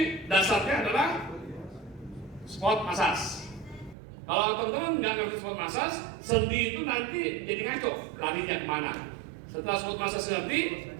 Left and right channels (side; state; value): left; drops out; at 4.0 s